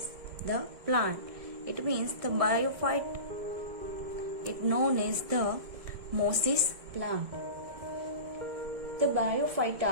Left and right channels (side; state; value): left; late; 1.7 ms